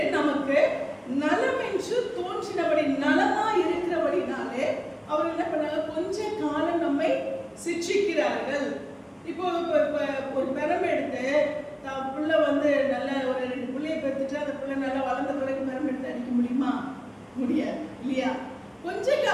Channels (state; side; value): identical; both; correlation 1.00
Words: நமக்கு நலமென்று தோன்றினபடி, நலமா இருக்கிறபடினாலே அவர் என்ன பண்ணாங்க? கொஞ்ச காலம் நம்மை சிட்சிக்கிறார்கள். இப்போ ஒரு பெரம் எடுத்து பிள்ளை நல்ல ஒரு 2 பிள்ளையை பெற்றுட்டு அந்த பிள்ளை நல்லா வளர்ந்த பிறகு பெரம் எடுத்து அடிக்க முடியுமா? முடியாது இல்லையா? கொஞ்ச